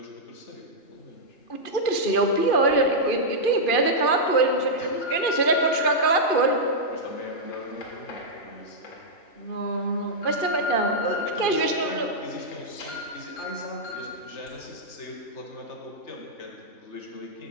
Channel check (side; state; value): right; late; 2.5 ms